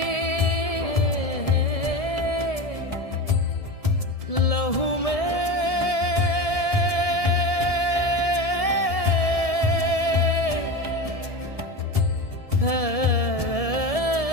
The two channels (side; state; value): right; late; 1.7 ms